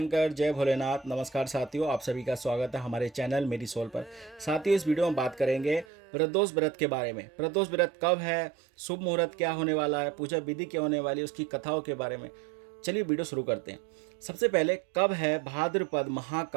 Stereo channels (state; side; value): drops out; left; at 5.9 s